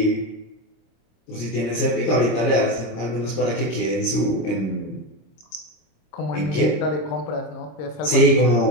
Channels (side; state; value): right; late; 26 ms